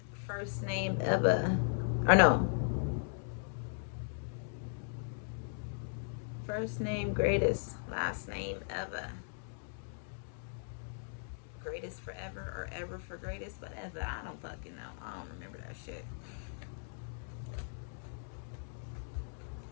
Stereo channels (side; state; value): right; silent; digital silence